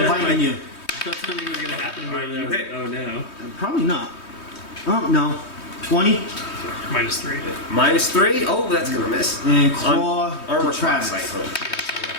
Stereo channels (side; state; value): right; late; 3.2 ms